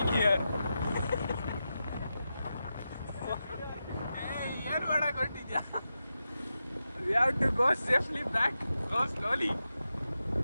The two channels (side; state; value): both; inverted; correlation -0.90